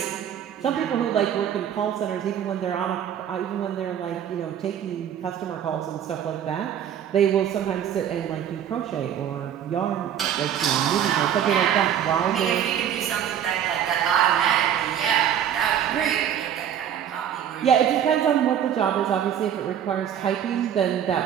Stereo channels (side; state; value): left; quieter; 9.5 dB